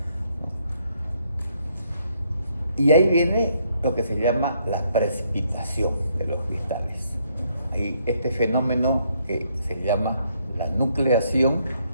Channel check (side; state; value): both; inverted; correlation -0.72